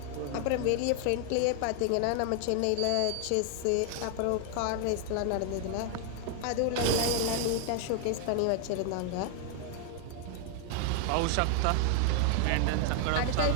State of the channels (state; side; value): different; both; correlation 0.00